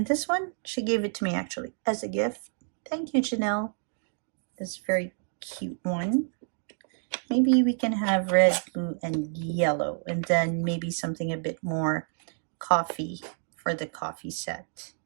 this one, she gave it to me actually as a gift. Thank you, Janelle. This very cute one. Maybe we can have red, blue, and yellow, and then maybe something a bit more coffee for the coffee set.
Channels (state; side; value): silent; left; digital silence